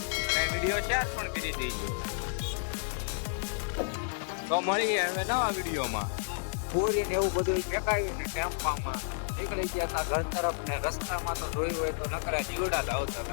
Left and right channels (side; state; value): right; silent; digital silence